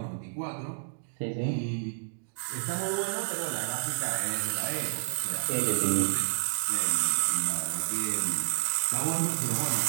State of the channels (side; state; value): left; silent; digital silence